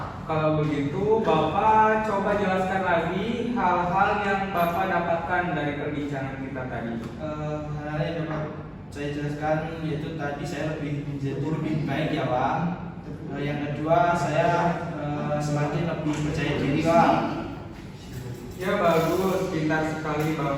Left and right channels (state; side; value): identical; both; correlation 1.00